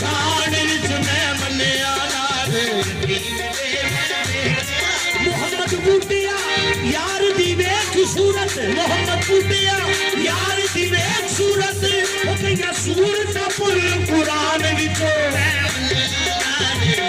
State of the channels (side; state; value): both; identical; correlation 1.00